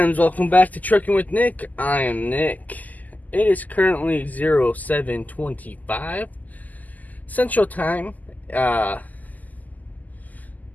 Welcome back to Trucking with Nick. I am Nick. It is currently 07:25 Central Time, 12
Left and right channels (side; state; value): right; late; 0.080 ms